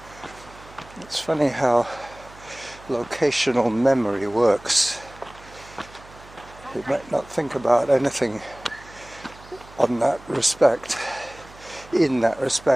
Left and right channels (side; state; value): right; noise; hum, 21 dB below the sound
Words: It's funny how locational memory works. You might not think about anything in that respect